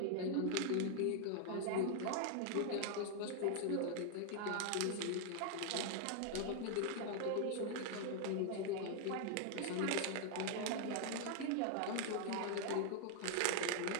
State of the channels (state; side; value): different; both; correlation 0.00